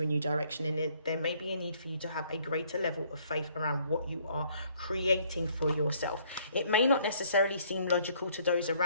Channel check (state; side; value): inverted; both; correlation -0.63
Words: a new direction. And there may be a need for you to have a greater level of faith around what you are creating for yourself. It may not necessarily seem logical to those